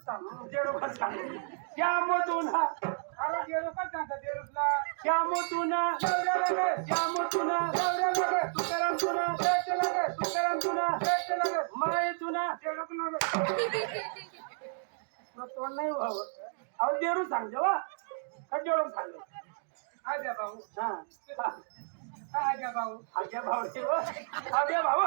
सांगू जेवढं सांगू श्याम तुना अरे जेडूकच सांगता जेडूकला श्याम तुना नवरा लागत श्याम तुना नवरा लागत तुकाराम तुना शेत लागत तुकाराम तुना शेत लागत माये तुना. जेडूक लागत. तुला तोंड नाही व्हावं. अहो देरू सांग जेव्हा का जेवढं सांग. आज्या भाऊ हा आज्या भाऊ आज्या भाऊ आज्या भाऊ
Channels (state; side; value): silent; left; digital silence